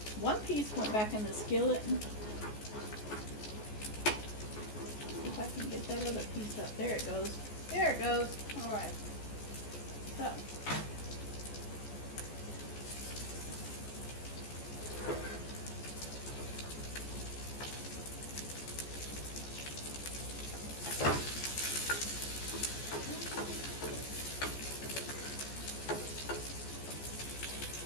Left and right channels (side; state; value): right; late; 14 ms